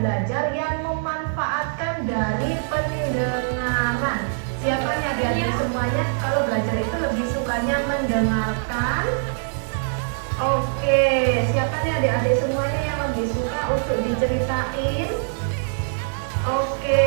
belajar yang memanfaatkan dari pendengaran. Siapa nih adik-adik semuanya kalau belajar itu lebih sukanya mendengarkan? Oke, siapa nih adik-adik semuanya yang lebih suka untuk diceritain? Oke,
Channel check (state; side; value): silent; left; 63 dB below the other